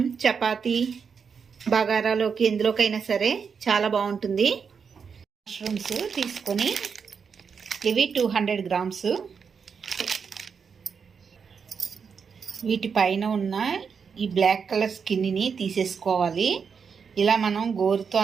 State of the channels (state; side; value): quieter; left; 6.2 dB